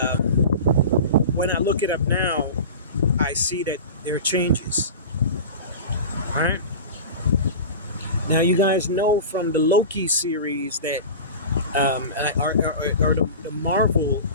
when I look it up now, I see that there are changes. All right. Now, you guys know from the Loki series that, or the Marvel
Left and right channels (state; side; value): inverted; both; correlation -0.32